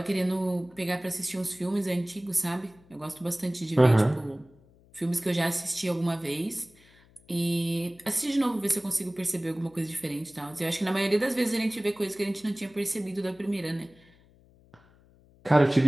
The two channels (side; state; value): left; noise; hum, 28 dB below the sound